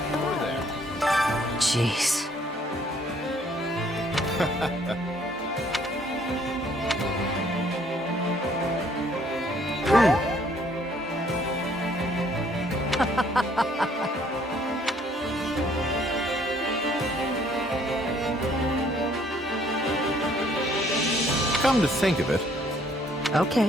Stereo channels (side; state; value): both; normal; correlation 0.63